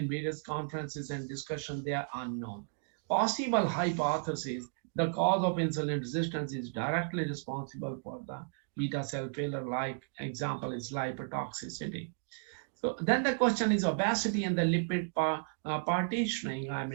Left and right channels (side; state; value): left; silent; digital silence